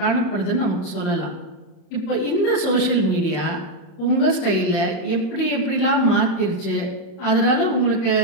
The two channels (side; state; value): right; late; 30 ms